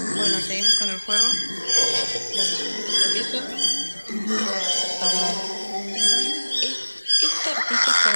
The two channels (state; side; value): inverted; both; correlation -1.00